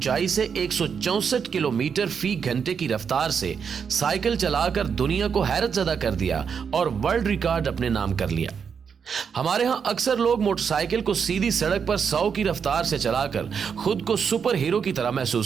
से 164 किलोमीटर फी घंटे की रफ्तार से साइकिल चलाकर दुनिया को हैरत ज़दा कर दिया और वर्ल्ड रिकॉर्ड अपने नाम कर लिया। हमारे यहाँ अक्सर लोग मोटरसाइकिल को सीधी सड़क पर 100 की रफ्तार से चलाकर खुद को सुपर हीरो की तरह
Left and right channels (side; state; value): left; quieter; 6.7 dB